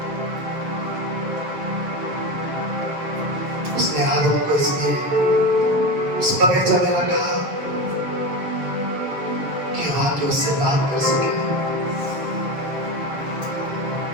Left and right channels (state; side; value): late; left; 6.9 ms